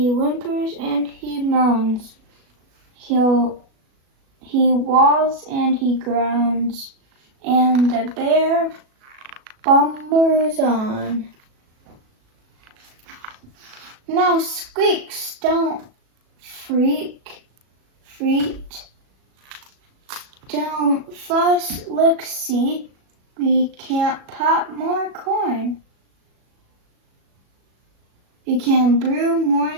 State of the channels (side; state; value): left; late; 37 ms